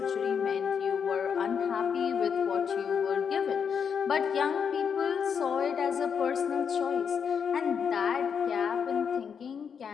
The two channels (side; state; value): right; quieter; 6.9 dB